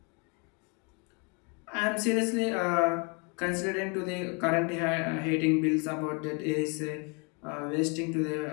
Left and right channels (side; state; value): right; quieter; 33.7 dB